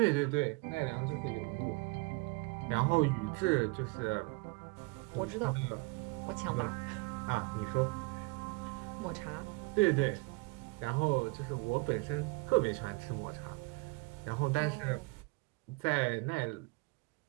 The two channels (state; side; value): quieter; left; 27.2 dB